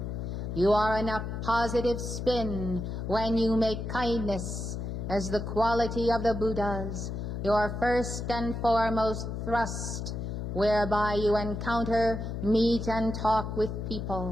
You are in a positive spin when you make kindness as the quality of the Buddhas, your first and foremost thrust, whereby you encounter, meet, and talk with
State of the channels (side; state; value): left; noise; hum, 5 dB below the sound